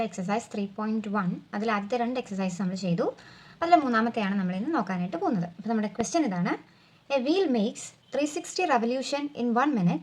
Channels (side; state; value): both; identical; correlation 1.00